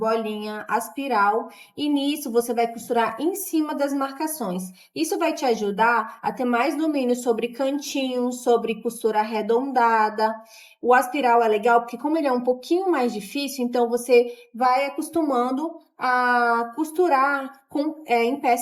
aspiral e nisso você vai costurar em cima das marcações. Isso vai te ajudar a ter mais domínio sobre cantinhos, sobre costura arredondada. O aspiral é legal porque como ele é um pouquinho mais difícil, então você vai acostumando a costurar em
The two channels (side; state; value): both; identical; correlation 1.00